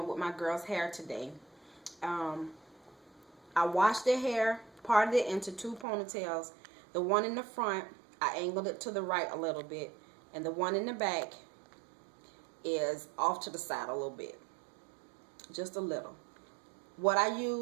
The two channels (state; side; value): drops out; left; at 5.9 s